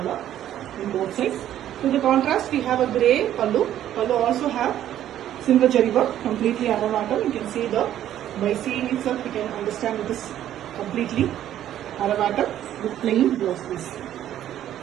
in both sides. To the contrast, we have a grey pallu. Pallu also have silver jari work, completely Aravatam. You can see by seeing itself, you can understand it is completely Aravatam with plain blouse piece.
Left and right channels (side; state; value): left; quieter; 11.7 dB